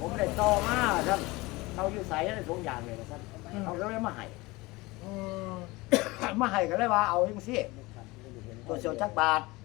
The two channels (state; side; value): quieter; right; 22.1 dB